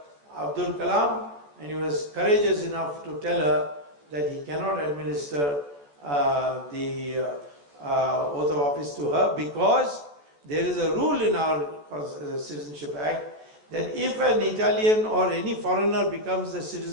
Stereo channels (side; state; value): left; late; 14 ms